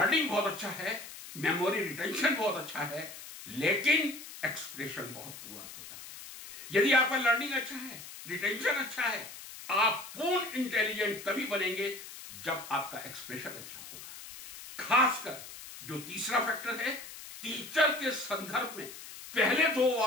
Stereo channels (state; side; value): noise; left; hiss, 13 dB below the sound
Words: बहुत अच्छा है, मेमोरी रिटेंशन बहुत अच्छा है, लेकिन एक्सप्रेशन बहुत पुअर होता है। यदि आपका लर्निंग अच्छा है, रिटेंशन अच्छा है, आप पूर्ण इंटेलिजेंट तभी बनेंगे जब आपका एक्सप्रेशन अच्छा होगा। खासकर जो तीसरा फैक्टर है, टीचर के संदर्भ में पहले 2